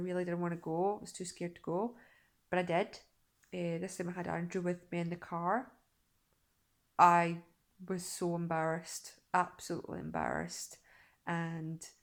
didn't want to go. I was too scared to go, but I did. This time I had Andrew with me in the car. I was so embarrassed, absolutely embarrassed, and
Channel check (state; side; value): identical; both; correlation 1.00